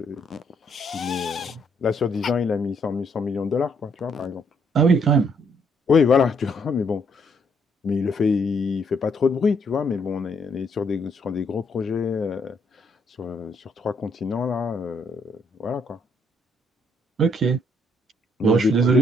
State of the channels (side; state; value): both; normal; correlation 0.70